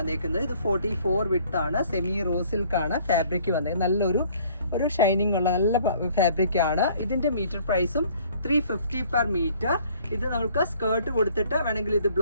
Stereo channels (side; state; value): both; inverted; correlation -0.57